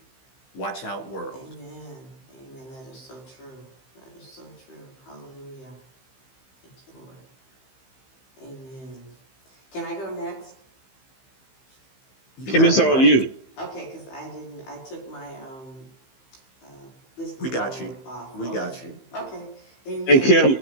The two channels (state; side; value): late; right; 15 ms